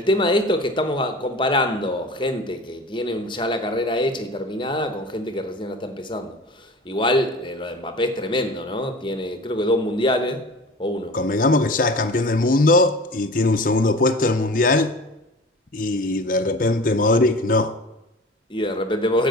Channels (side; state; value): both; normal; correlation 0.39